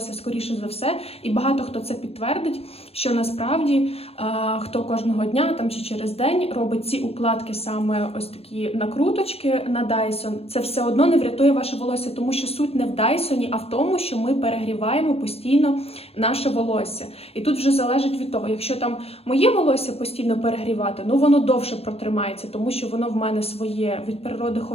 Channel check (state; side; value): late; right; 0.29 ms